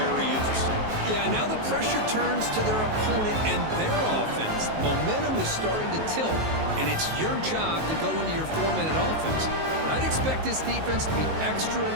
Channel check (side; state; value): left; late; 19 ms